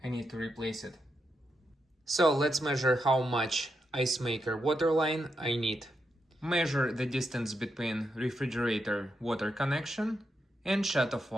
I need to replace it. So let's measure how much ice maker water line I need. Measure the distance between refrigerator water connection and shutoff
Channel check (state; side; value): normal; both; correlation 0.84